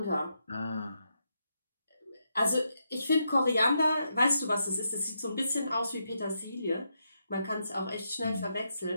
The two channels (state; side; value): inverted; both; correlation -0.82